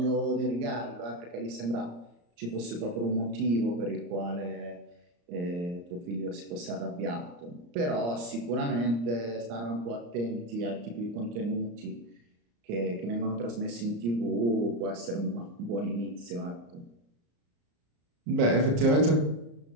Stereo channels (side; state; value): left; late; 34 ms